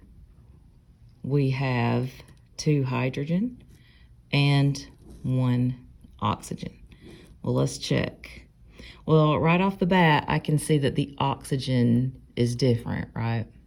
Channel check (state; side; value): identical; both; correlation 1.00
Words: we have 2 hydrogen, and 1 oxygen. Well, let's check. Well, right off the bat, I can see that the oxygen is different, right?